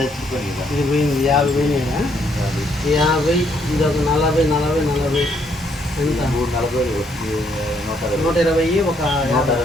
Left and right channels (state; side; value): normal; both; correlation 0.70